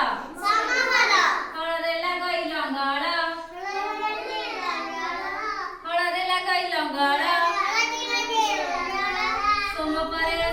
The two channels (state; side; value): identical; both; correlation 1.00